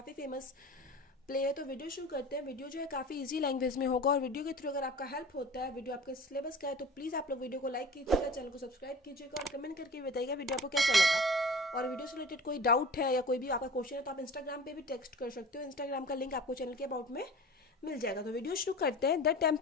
फेमस प्ले है। तो वीडियो शुरू करते हैं। वीडियो जो है काफ़ी इजी लैंग्वेज में होगा और वीडियो के थ्रू अगर आपका हेल्प होता है, वीडियो आपके सिलेबस का है, तो प्लीज़ आप लोग वीडियो को लाइक कीजिएगा, चैनल को सब्सक्राइब कीजिएगा और कमेंट करके बताइएगा वीडियो आपको कैसा लगा। और वीडियो से रिलेटेड कोई डाउट है या कोई भी आपका क्वेश्चन है तो आप इंस्टाग्राम पे भी टेक्स्ट कर सकते हो। इंस्टाग्राम का लिंक आपको चैनल के अबाउट में मिल जाएगा। तो वीडियो शुरू करते हैं। The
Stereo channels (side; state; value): both; normal; correlation 0.39